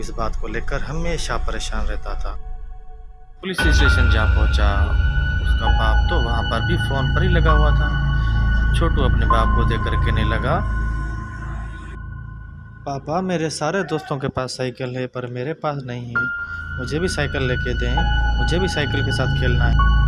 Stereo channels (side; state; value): both; identical; correlation 1.00